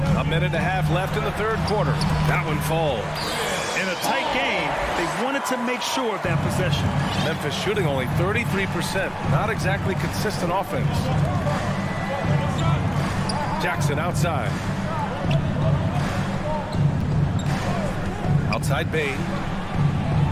A minute and a half left in the third quarter. That one falls. In a tight game, they wanted to make sure of that possession. Memphis shooting only 33%. Not exactly consistent offense. Jackson outside. Outside Bane.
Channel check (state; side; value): identical; both; correlation 1.00